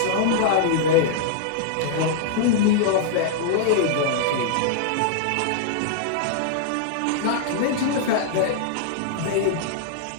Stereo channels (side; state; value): both; different; correlation -0.01